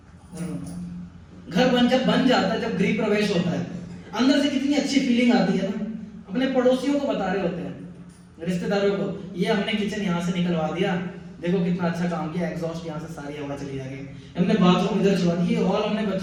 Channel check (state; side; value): identical; both; correlation 1.00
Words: घर जब बन जाता है, जब गृह प्रवेश होता है, अंदर से कितनी अच्छी फीलिंग आती है ना। अपने पड़ोसियों को बता रहे होते हैं, रिश्तेदारों को, ये हमने किचन यहाँ से निकलवा दिया, देखो कितना अच्छा काम किया, एग्जॉस्ट यहाँ से सारी हवा चली जाएगी, हमने बाथरूम इधर छुड़वा दी, हॉल हमने